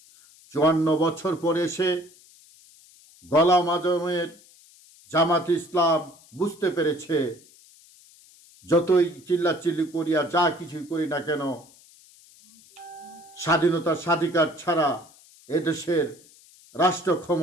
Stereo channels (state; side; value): noise; left; hiss, 26 dB below the sound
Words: 54 বছর পরে এসে গোলাম আজমের জামাত ইসলাম বুঝতে পেরেছে, যতই চিল্লাচিল্লি করি আর যা কিছুই করি না কেন, স্বাধীনতার স্বাধিকার ছাড়া এদেশের রাষ্ট্র